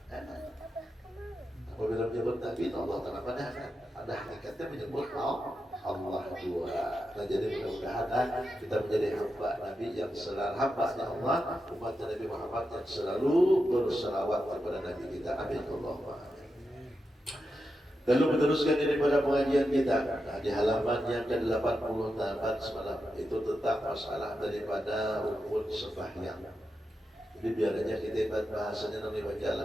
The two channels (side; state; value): both; normal; correlation 0.88